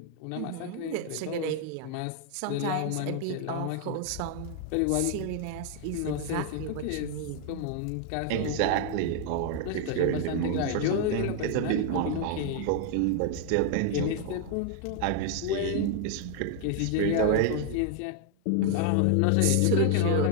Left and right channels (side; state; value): both; different; correlation 0.00